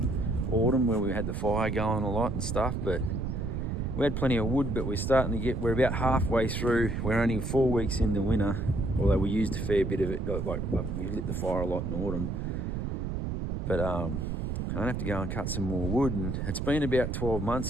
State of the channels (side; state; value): right; noise; rumble, 2 dB below the sound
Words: autumn where we had the fire going a lot and stuff, but we had plenty of wood, but we're about halfway through. We're only 4 weeks in the winter, although we used a fair bit of it, like we lit the fire a lot in autumn. But I'm gonna have to go and cut some more wood, and it's been about 12 months